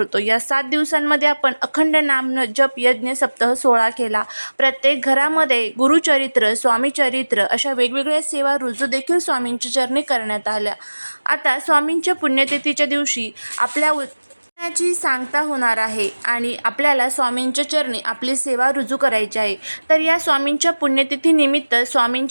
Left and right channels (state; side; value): inverted; both; correlation -1.00